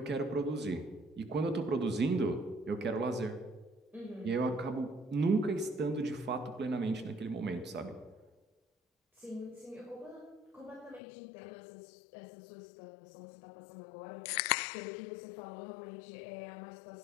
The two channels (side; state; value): right; drops out; at 11.0 s